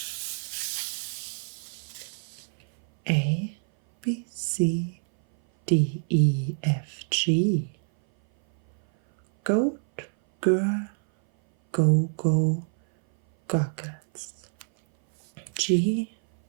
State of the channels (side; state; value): left; silent; 57 dB below the other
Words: A, B, C, D, E, F, G. Goat, girl, go, go, goggles. G,